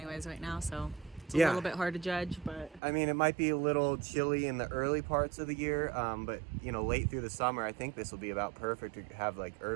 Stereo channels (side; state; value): left; drops out; at 2.8 s